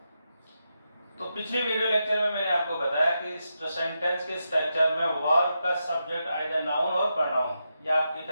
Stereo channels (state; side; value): inverted; both; correlation -0.86